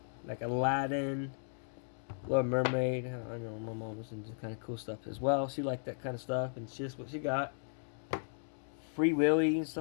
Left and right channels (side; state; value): right; silent; digital silence